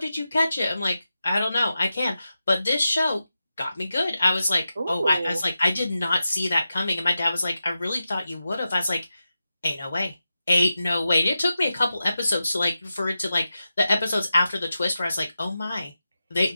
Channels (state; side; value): inverted; both; correlation -0.91